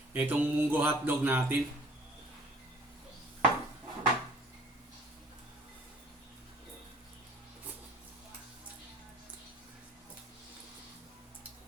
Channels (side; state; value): both; normal; correlation 0.54